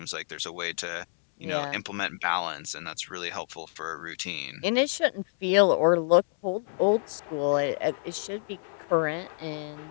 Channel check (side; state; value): right; silent; digital silence